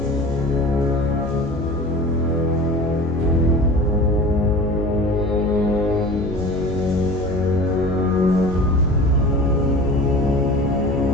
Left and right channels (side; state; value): both; normal; correlation 0.37